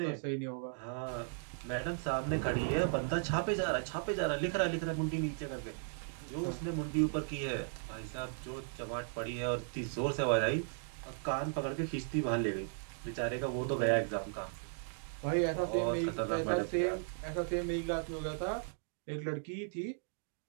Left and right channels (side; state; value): left; silent; digital silence